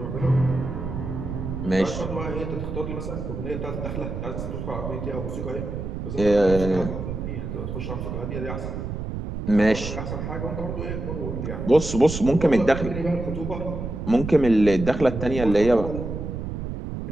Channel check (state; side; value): noise; right; rumble, 5 dB below the sound